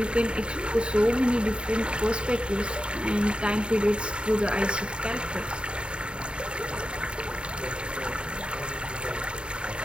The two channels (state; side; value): late; left; 0.052 ms